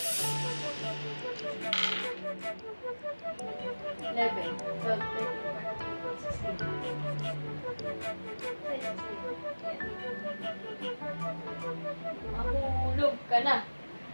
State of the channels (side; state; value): both; inverted; correlation -1.00